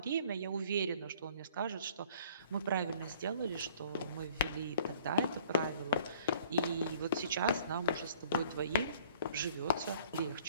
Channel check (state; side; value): inverted; both; correlation -0.54